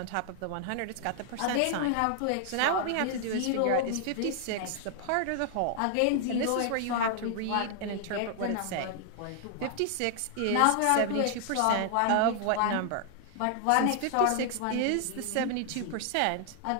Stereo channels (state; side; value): different; both; correlation 0.00